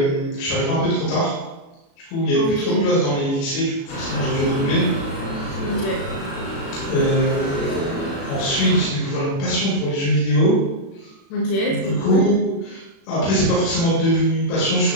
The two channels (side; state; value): right; late; 36 ms